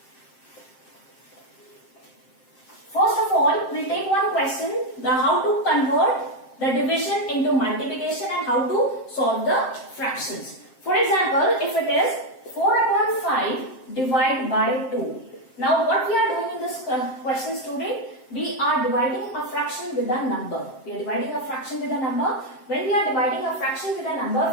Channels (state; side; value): late; right; 7.6 ms